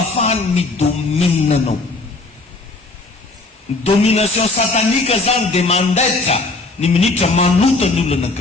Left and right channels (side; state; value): right; quieter; 3.3 dB